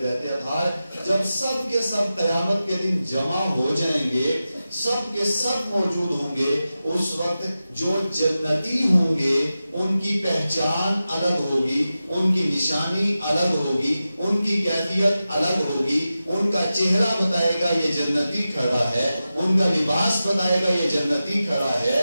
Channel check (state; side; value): inverted; both; correlation -0.93